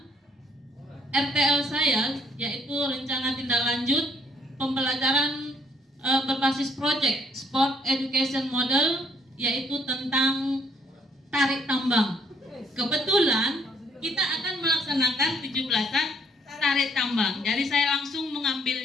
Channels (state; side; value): normal; both; correlation 0.66